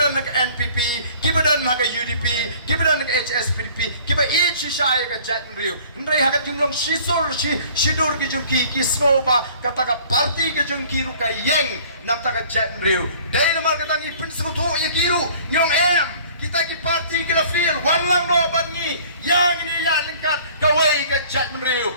nak NPP kibadan nak UDP kibadan nak HS PDP kiba it shisai ka jat menri ndrei hakat jumlong shidur ki jungki ki snoba kata ka parti ki jungki ru ka yeng nam ta ka jat menri dei namar kata ngi pin sekutu ya kiru nyong kita ki parti kila feel wan lang no bangi yang ini ya lengkat kawai ka jat menri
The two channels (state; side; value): inverted; both; correlation -0.51